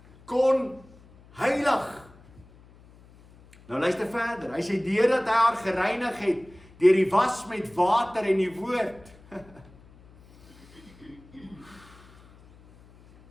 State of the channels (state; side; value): noise; left; hum, 25 dB below the sound